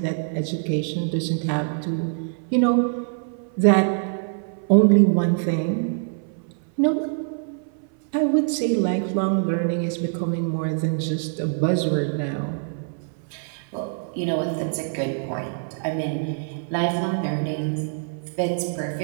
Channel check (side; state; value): left; silent; 58 dB below the other